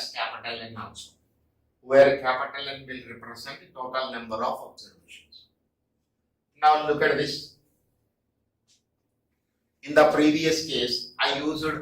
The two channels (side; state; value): both; identical; correlation 1.00